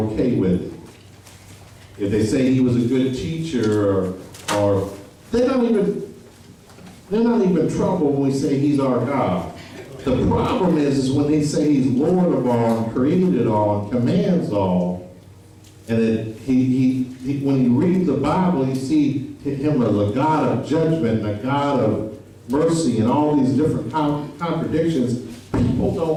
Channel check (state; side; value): identical; both; correlation 1.00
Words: with it. If they say he was a good teacher, or they're not even troubled when we say he's our God. The problem is when they say he's Lord of all and created all and commands all, and that when you read the Bible, you see him as a God of judgment and a God of mercy and all these different contradictions. People